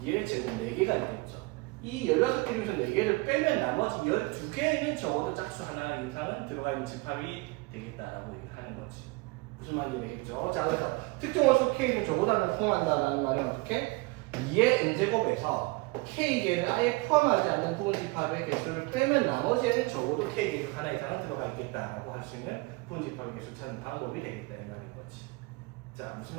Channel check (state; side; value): quieter; left; 25.1 dB